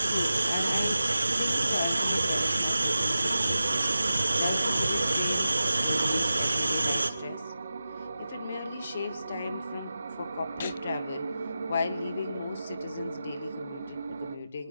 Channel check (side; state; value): both; inverted; correlation -0.93